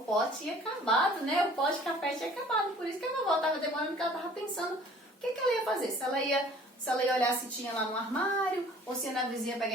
pó tinha acabado, né? O pó de café tinha acabado. Por isso que a vovó estava demorando, porque ela estava pensando o que ela ia fazer. Se ela ia olhar se tinha lá no armário, ou se ia na vizinha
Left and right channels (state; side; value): normal; both; correlation 0.51